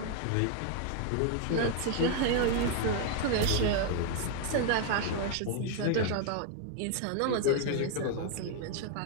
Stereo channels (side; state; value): both; different; correlation 0.00